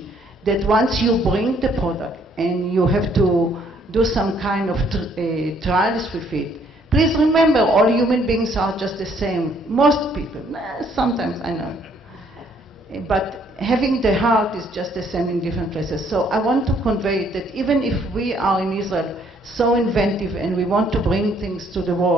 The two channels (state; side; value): normal; both; correlation 0.65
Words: that once you bring the product and you have to do some kind of trials with it, please remember, all human beings are just the same. Most people, sometimes I know. But having the heart is just the same in different places. So I want to convey that even if we are in Israel so inventive and we want to bring things to the